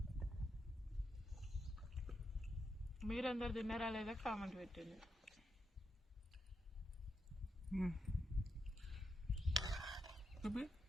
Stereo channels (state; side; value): normal; both; correlation 0.82